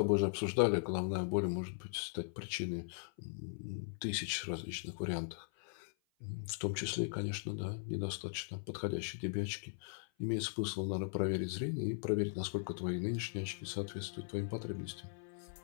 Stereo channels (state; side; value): silent; right; 52 dB below the other